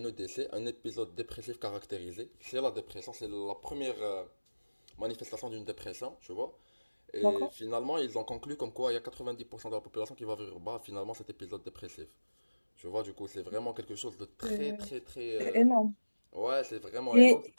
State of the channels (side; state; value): both; inverted; correlation -1.00